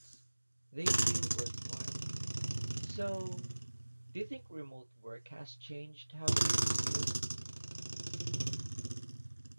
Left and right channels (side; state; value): both; inverted; correlation -1.00